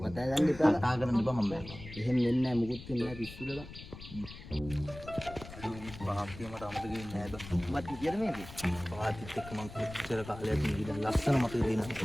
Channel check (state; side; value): noise; left; rumble, 14 dB below the sound